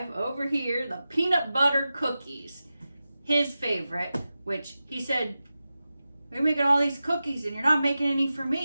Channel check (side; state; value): both; inverted; correlation -0.93